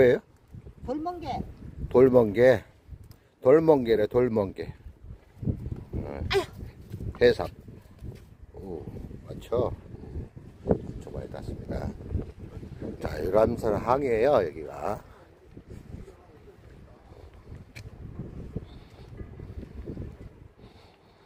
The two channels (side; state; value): both; identical; correlation 1.00